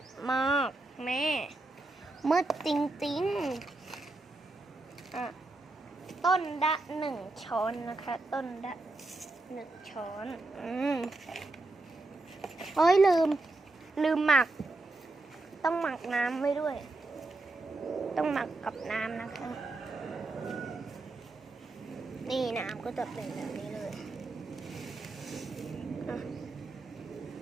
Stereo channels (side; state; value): left; quieter; 3.1 dB